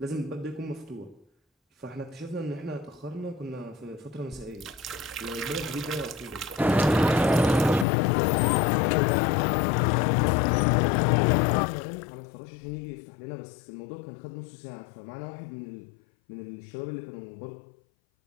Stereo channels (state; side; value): drops out; right; at 7.9 s